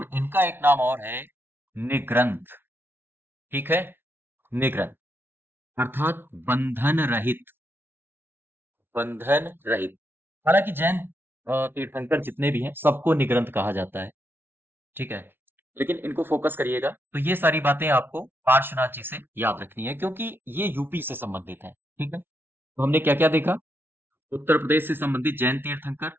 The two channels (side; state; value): left; late; 0.11 ms